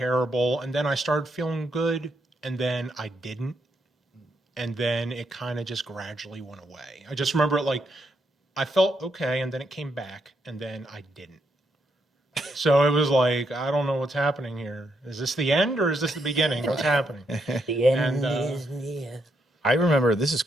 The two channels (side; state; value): both; normal; correlation 0.78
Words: And then I started feeling good. And then I didn't. And then it kind of just gradually went away. I just remember it like, I felt okay. And then it came back. And then I didn't. So it was like, I don't know what's happening here. Is this the end or is this the beginning? What's happening? The end And, is near. I remember, this is